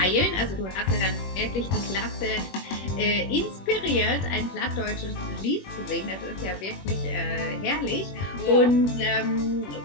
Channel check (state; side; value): late; right; 21 ms